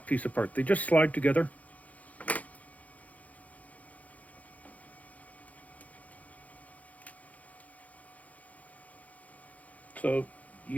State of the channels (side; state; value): right; late; 0.072 ms